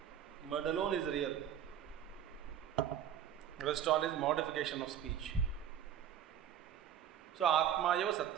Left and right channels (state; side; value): quieter; left; 9.5 dB